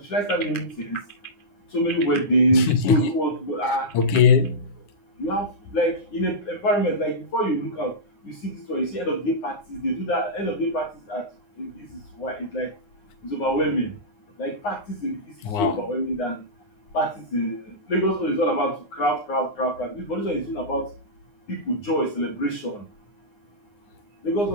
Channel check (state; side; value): late; right; 9.7 ms